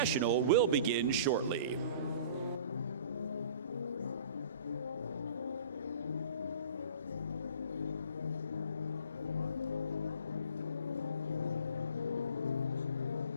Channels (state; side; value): inverted; both; correlation -0.45